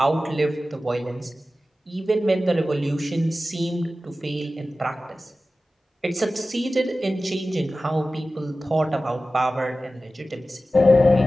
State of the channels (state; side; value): normal; both; correlation 0.95